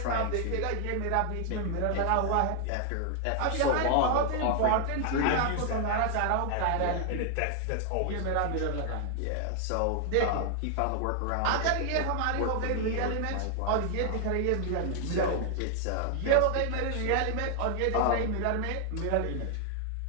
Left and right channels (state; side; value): different; both; correlation 0.00